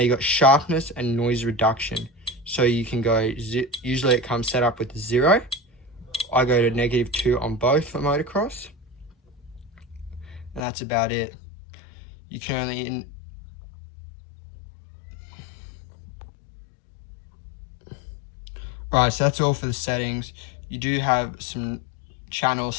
got sharpness and noise reduction. So you can go, usually it comes set up with 0. I go to -2 on both for motocross. And that's about it. You can only... Alright, so that's all for the settings. You do have some channel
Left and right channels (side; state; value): right; drops out; at 10.6 s